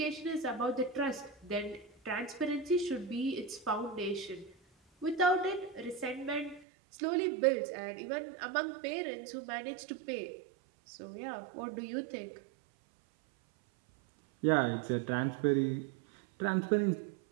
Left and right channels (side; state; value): left; drops out; at 6.7 s